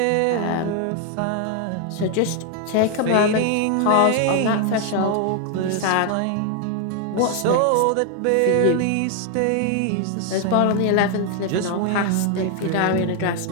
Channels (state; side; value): different; both; correlation 0.00